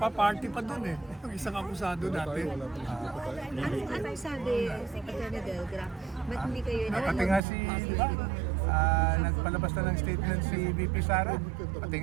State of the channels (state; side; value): drops out; left; at 7.4 s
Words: pa dun eh. Yung isang akusado dati. Anong sabi si Atty. Delgra? Ba't hindi kayo Pati nga si, nagpalabas na ng statement si VP Sara. Pati